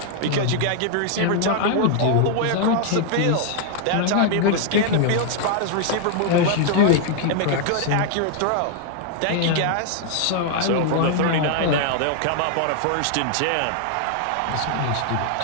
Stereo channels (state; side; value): different; both; correlation 0.00